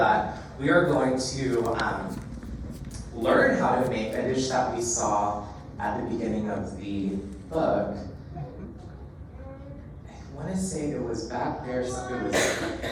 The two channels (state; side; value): identical; both; correlation 1.00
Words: we are going to learn how to make a dish that we saw at the beginning of the book. I want to say it was back there.